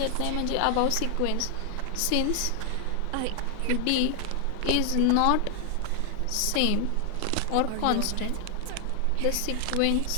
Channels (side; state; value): both; different; correlation 0.00